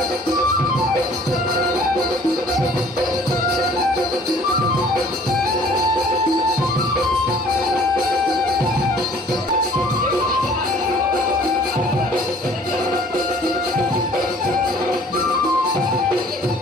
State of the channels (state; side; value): normal; both; correlation 0.53